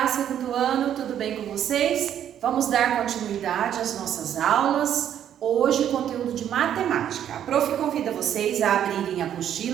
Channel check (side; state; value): left; quieter; 10.0 dB